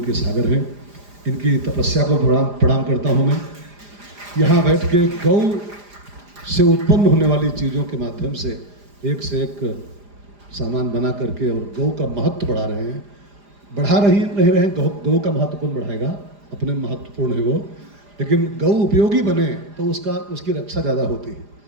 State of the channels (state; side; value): late; left; 4.9 ms